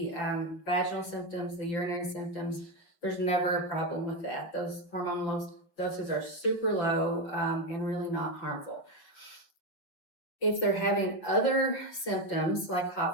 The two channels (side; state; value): right; late; 6.2 ms